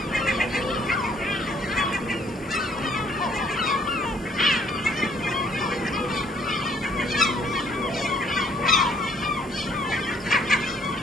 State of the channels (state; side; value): normal; both; correlation 0.64